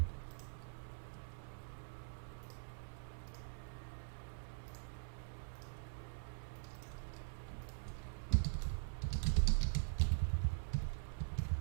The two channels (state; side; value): silent; left; digital silence